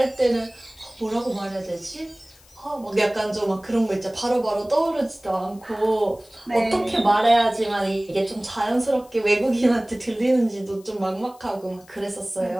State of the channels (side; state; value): left; noise; hiss, 27 dB below the sound